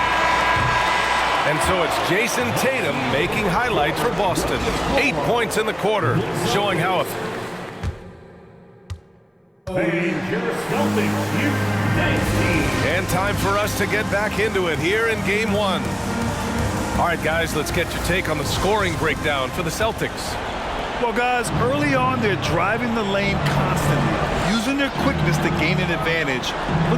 And so it's Jason Tatum making highlights for Boston. 8 points in the quarter, showing how and time for us to get back into it here in game 1. All right, guys, let's get your take on the scoring breakdown for the Celtics. Well, guys, early on, they're driving the lane constantly, using their quickness to gain an advantage.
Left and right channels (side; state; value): both; identical; correlation 1.00